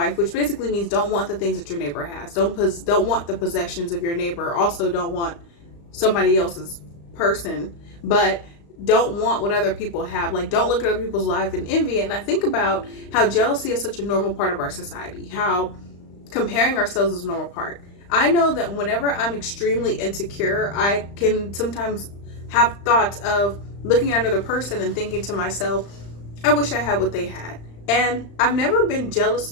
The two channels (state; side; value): late; right; 35 ms